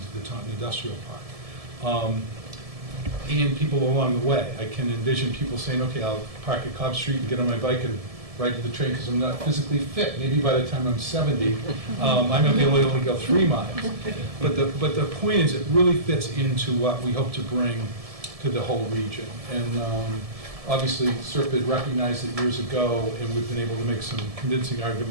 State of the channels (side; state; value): left; late; 1.7 ms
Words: the Taunton Industrial Park. And people along the way. I can envision people saying, okay, I'll park at Cobb Street and get on my bike and ride to the train because I'm not physically fit. Maybe by the time I'm 70, I might be able to only go 3 miles. But the point is, it really fits into what we hope to bring to the whole region. And obviously, SERP recognized it years ago, and we've been able to make some convincing